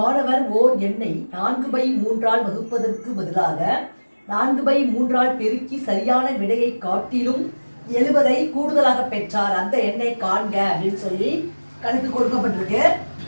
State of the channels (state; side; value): inverted; both; correlation -1.00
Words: ஓர் எண்ணை 4/3 வகுப்பதற்கு பதிலாக 4/3 பெருக்கி சரியான விடையை காட்டிலும் 70 கூடுதலாக பெற்றார். அந்த எண்ணை காண்க அப்படின்னு சொல்லி கணக்கு கொடுக்கப்பட்டிருக்கு.